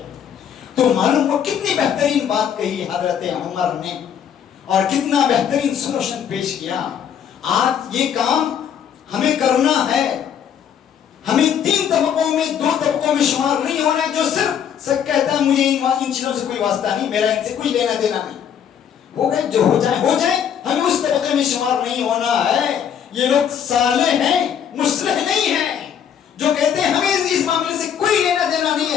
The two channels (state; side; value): quieter; right; 8.6 dB